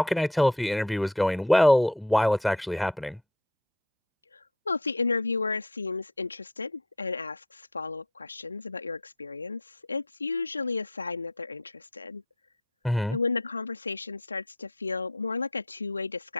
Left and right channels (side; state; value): both; normal; correlation 0.47